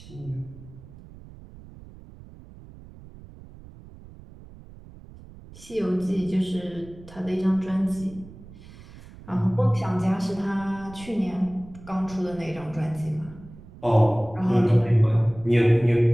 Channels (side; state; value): right; noise; rumble, 19 dB below the sound